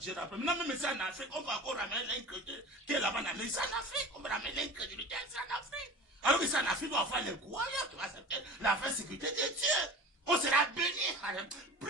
rappelle. Maintenant, même ici en Afrique, on va encore ramener l'incrédulité qui est là-bas en Amérique. Ici en Afrique, on va ramener l'incrédulité ici en Afrique. Alors qu'ici en Afrique, on va avoir les croyants qui vont accepter la vraie sécurité de Dieu. On sera béni.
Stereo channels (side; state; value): both; normal; correlation 0.36